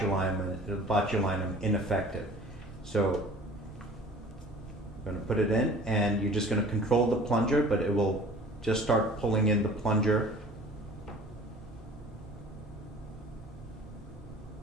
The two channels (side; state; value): both; normal; correlation 0.46